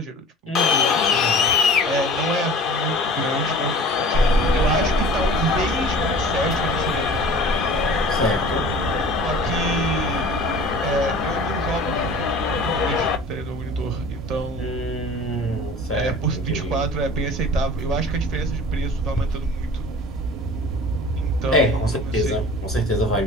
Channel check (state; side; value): normal; both; correlation 0.42